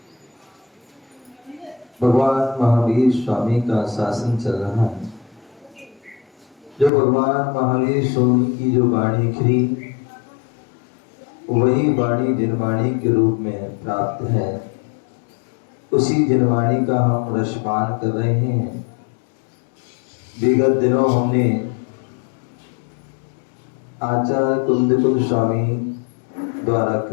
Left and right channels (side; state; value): right; drops out; at 6.9 s